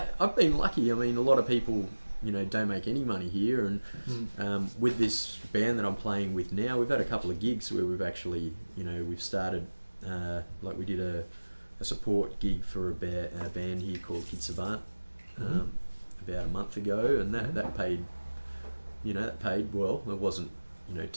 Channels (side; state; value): both; inverted; correlation -1.00